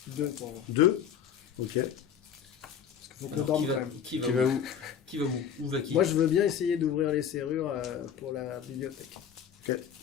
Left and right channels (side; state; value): right; quieter; 8.3 dB